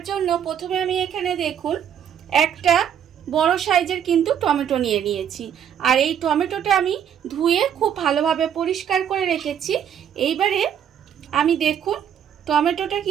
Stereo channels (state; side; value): quieter; left; 9.0 dB